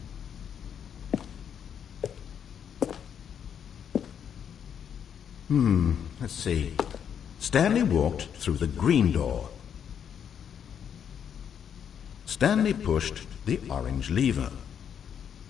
Let's see. Stanley walked through the green door. Stanley pushed the orange lever.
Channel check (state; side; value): quieter; right; 8.3 dB